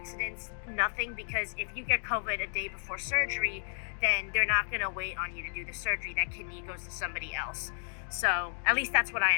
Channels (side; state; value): right; silent; 56 dB below the other